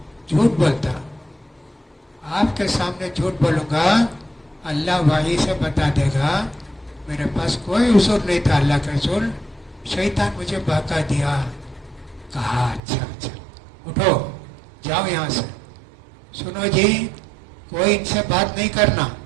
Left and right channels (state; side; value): drops out; left; at 12.8 s